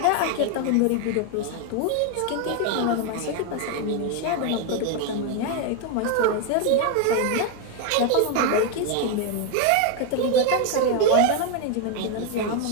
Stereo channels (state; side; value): different; both; correlation 0.01